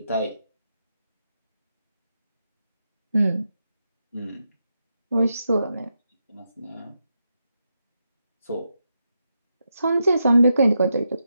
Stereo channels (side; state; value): both; inverted; correlation -0.85